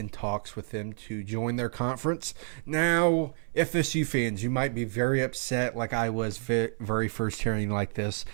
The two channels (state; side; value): silent; left; 58 dB below the other